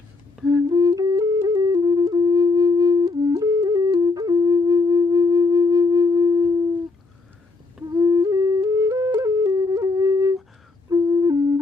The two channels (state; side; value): quieter; right; 3.7 dB